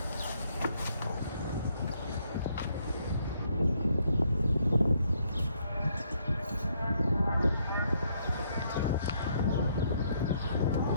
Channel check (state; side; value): inverted; both; correlation -0.71